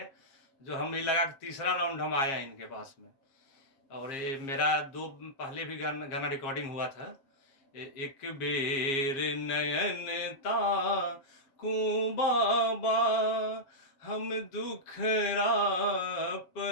जो हम ये लगा कि तीसरा राउंड हम आए हैं इनके पास में। और ये मेरा 2 पहले भी गाना रिकॉर्डिंग हुआ था। एक बेर नयन ताकू बाबा, हम दुखरापन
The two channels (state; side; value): late; right; 7.4 ms